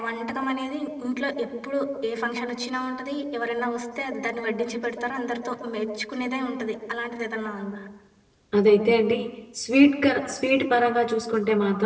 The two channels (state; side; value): identical; both; correlation 1.00